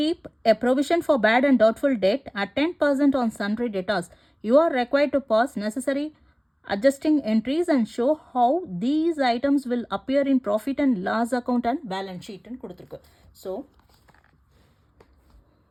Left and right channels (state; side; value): identical; both; correlation 1.00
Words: a provision for bad and doubtful debt at 10% on sundry debtors. You are required to pass necessary adjusting entries and show how these items will appear in profit and loss account and balance sheet ன்னு கொடுத்திருக்கு. So